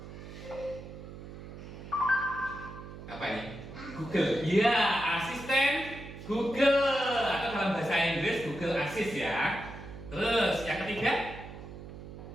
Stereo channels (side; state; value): right; noise; hum, 13 dB below the sound